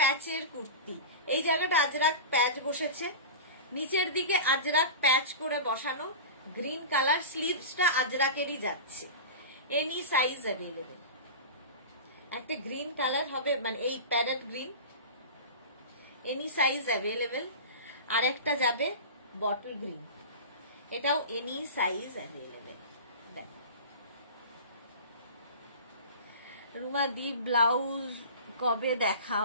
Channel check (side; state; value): both; inverted; correlation -0.31